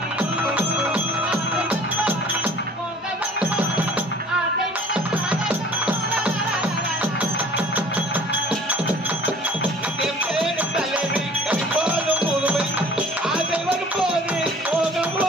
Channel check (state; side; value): normal; both; correlation 0.48